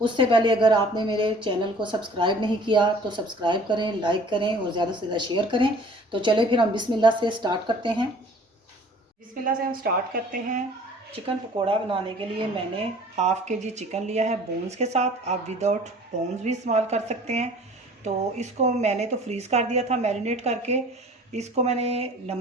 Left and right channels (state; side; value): normal; both; correlation 0.49